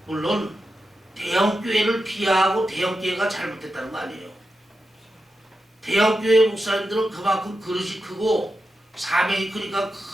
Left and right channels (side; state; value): both; normal; correlation 0.89